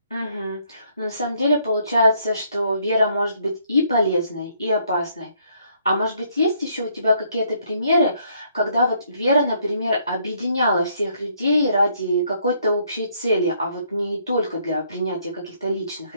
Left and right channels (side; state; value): both; inverted; correlation -0.69